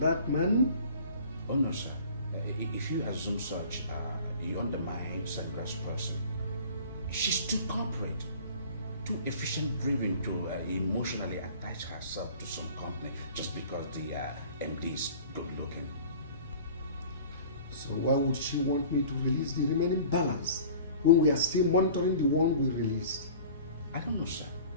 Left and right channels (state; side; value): inverted; both; correlation -0.44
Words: man? Oh no, sir. If you assume such, you undermine Sandra's person. She's too corporate, too efficient-driven to emotionally attach herself to some company just because the MD is good-looking. So why would she want me to release the remaining balance when we are still monitoring the one we released? I don't know, sir.